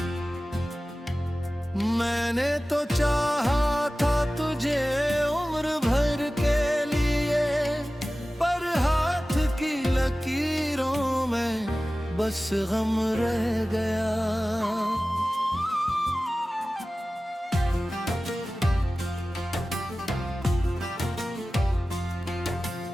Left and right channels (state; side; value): normal; both; correlation 0.96